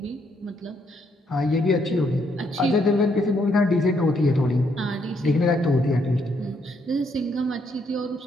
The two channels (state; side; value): normal; both; correlation 0.73